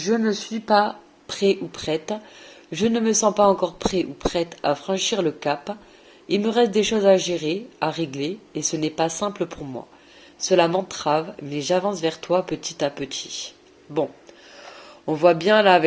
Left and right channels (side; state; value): both; identical; correlation 1.00